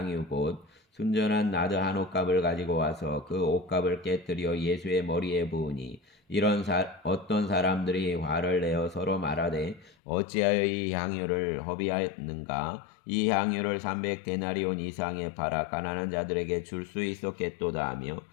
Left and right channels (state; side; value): drops out; right; at 10.0 s